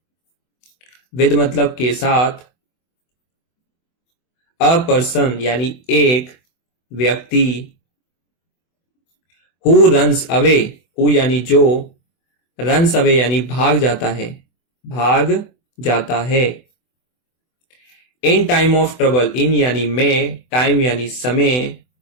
विद मतलब के साथ। अ पर्सन यानी एक व्यक्ति। हु रन्स अवे, हु यानी जो, रन्स अवे यानी भाग जाता है, भाग जाता है। इन टाइम ऑफ ट्रबल, इन यानी में, टाइम यानी समय,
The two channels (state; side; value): late; right; 24 ms